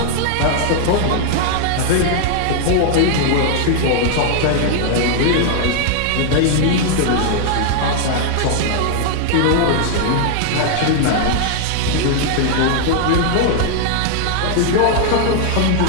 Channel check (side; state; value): both; different; correlation 0.00